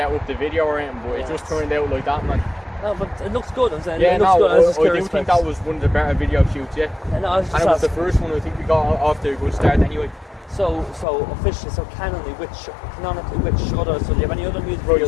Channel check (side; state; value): right; drops out; at 11.1 s